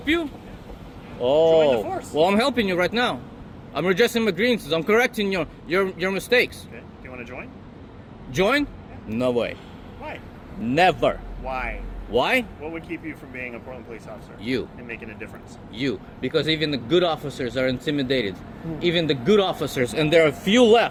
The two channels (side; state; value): both; identical; correlation 1.00